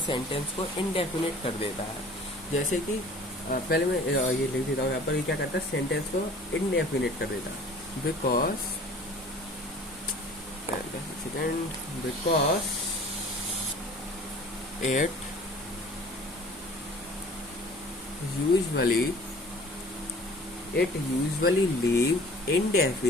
सेंटेंस को इंडेफिनिट कर देता है। जैसे कि पहले मैं ये लिख देता हूँ यहाँ पर, ये क्या करता है? सेंटेंस को इंडेफिनिट कर देता है। Because it usually leave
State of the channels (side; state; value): both; normal; correlation 0.47